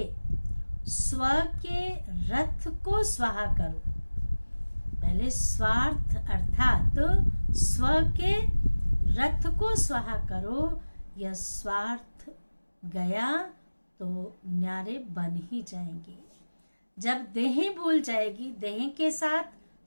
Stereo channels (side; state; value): both; inverted; correlation -1.00